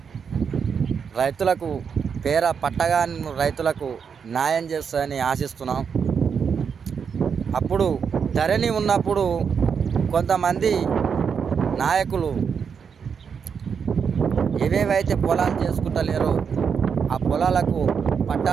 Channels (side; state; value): left; quieter; 6.6 dB